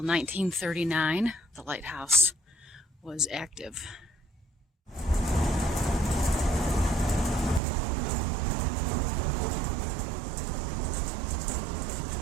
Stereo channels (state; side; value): drops out; left; at 7.6 s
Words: the lighthouse was active.